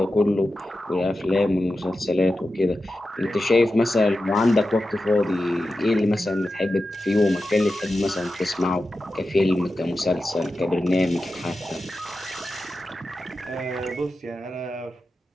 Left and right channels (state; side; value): normal; both; correlation 0.92